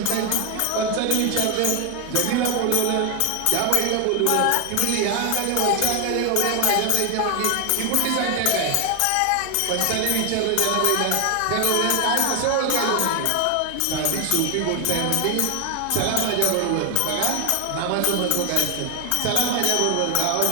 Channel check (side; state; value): both; different; correlation 0.01